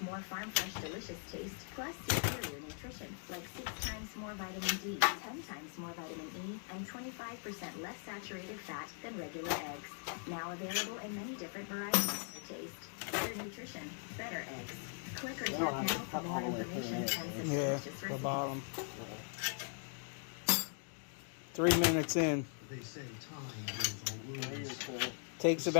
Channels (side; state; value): right; silent; 51 dB below the other